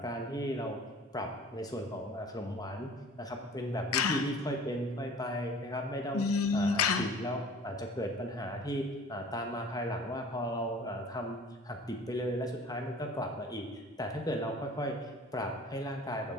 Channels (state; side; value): normal; both; correlation 0.45